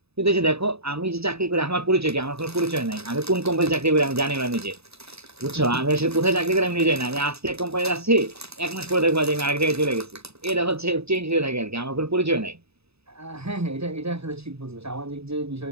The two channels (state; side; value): late; left; 0.79 ms